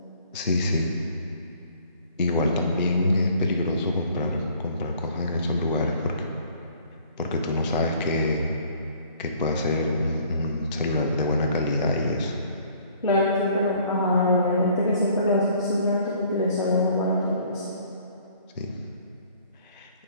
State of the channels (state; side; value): inverted; both; correlation -0.58